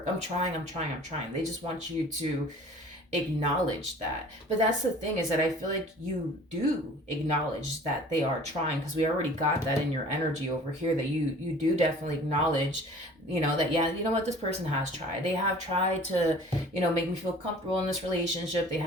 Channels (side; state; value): both; normal; correlation 0.47